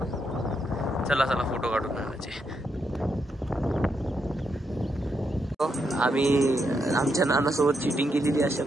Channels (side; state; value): both; normal; correlation 0.80